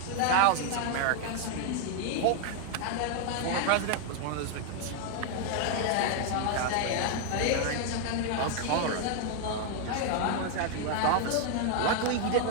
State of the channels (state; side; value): different; both; correlation 0.00